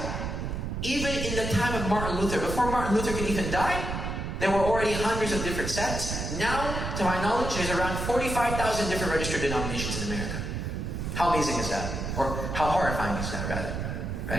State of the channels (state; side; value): noise; right; rumble, 4 dB below the sound